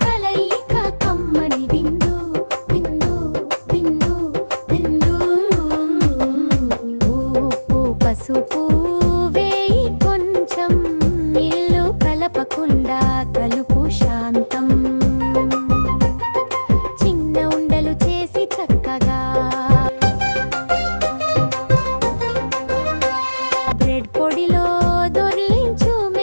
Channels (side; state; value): both; inverted; correlation -1.00